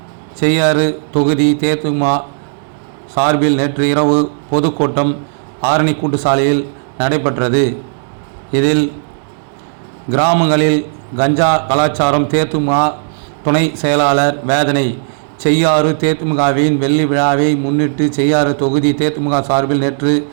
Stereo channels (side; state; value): left; silent; digital silence